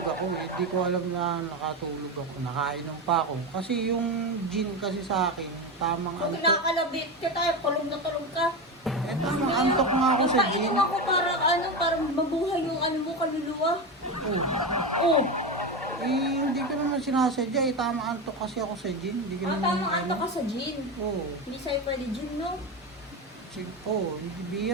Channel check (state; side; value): normal; both; correlation 0.18